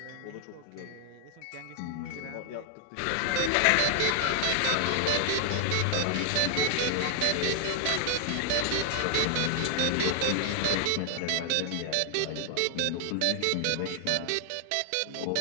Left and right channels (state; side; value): different; both; correlation 0.00